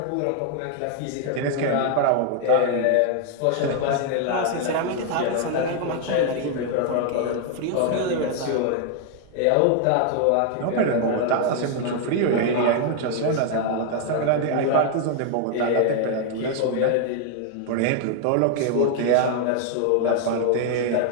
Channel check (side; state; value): both; different; correlation 0.00